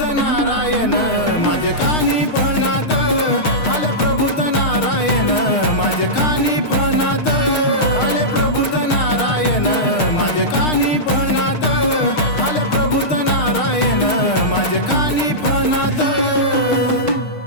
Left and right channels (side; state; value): right; late; 6.5 ms